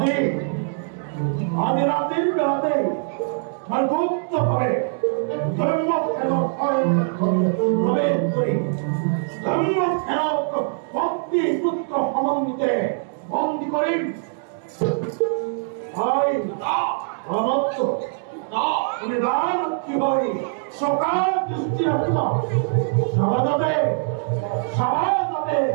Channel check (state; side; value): silent; left; digital silence